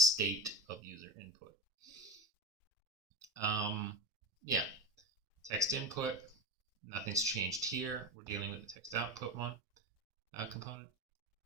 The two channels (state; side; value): normal; both; correlation 0.22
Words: of user input. Yeah, text input. Nothing's changed here. We're dealing with the text output one component.